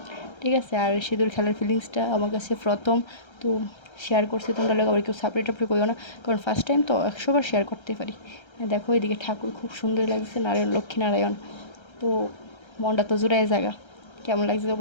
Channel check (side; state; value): right; late; 1.3 ms